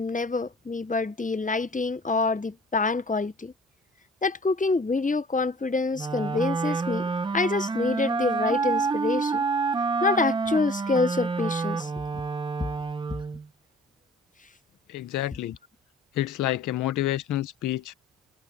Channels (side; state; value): both; normal; correlation 0.49